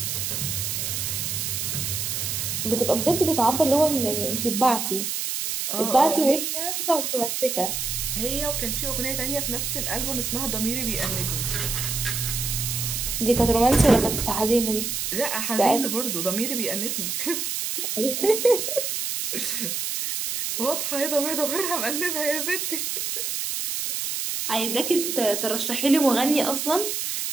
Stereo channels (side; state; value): right; noise; hiss, 2 dB below the sound